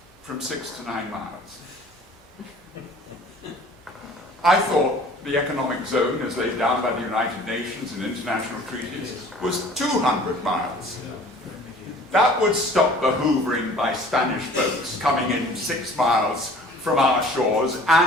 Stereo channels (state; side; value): normal; both; correlation 0.49